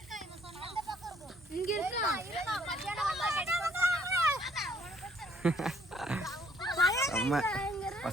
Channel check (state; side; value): normal; both; correlation 0.64